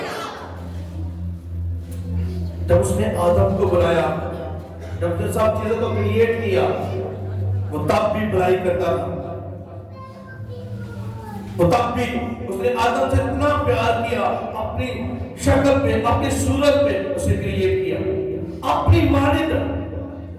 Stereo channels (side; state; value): both; identical; correlation 1.00